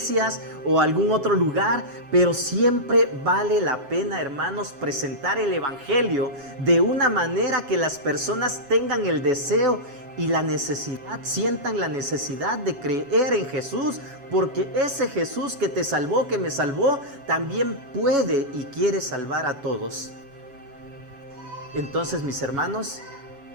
o a algún otro lugar, pero siempre vale la pena, hermanos, presentar el Evangelio de una manera que las personas tengan el deseo y la necesidad, sientan la necesidad de creer en Jesús, porque ese Jesús que te salvó, que me salvó, también puede y quiere salvar a todos. Entonces, mis hermanos,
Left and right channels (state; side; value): late; left; 7.2 ms